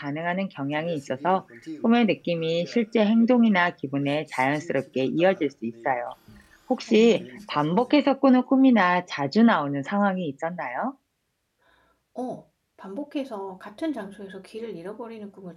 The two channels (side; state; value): both; identical; correlation 1.00